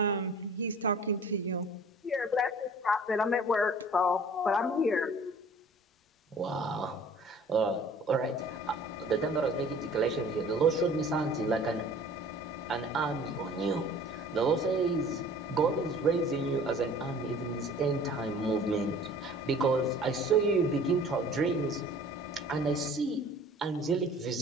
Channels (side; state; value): both; normal; correlation 0.48